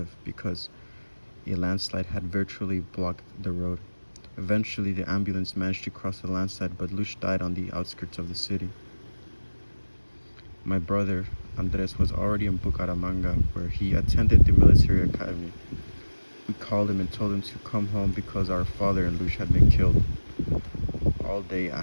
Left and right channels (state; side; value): inverted; both; correlation -1.00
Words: because a landslide had virtually blocked the road. Eventually, the ambulance managed to cross the landslide, but Luch died on the outskirts of the city. My brother, Andres, was already in Bucaramanga, where he attended the military academy. We called him and told him to come home because our father and Luch had been killed. All day, I